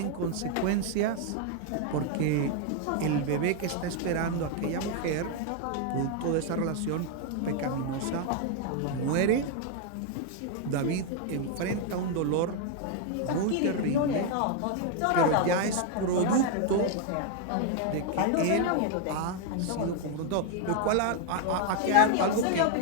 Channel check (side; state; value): both; different; correlation 0.00